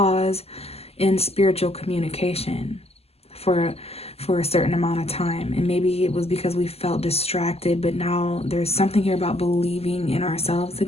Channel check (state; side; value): late; right; 0.29 ms